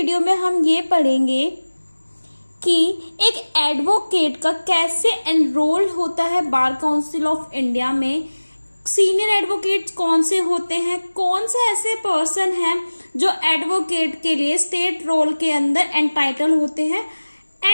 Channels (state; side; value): inverted; both; correlation -1.00